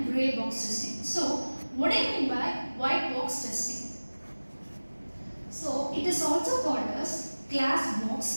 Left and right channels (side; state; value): both; inverted; correlation -1.00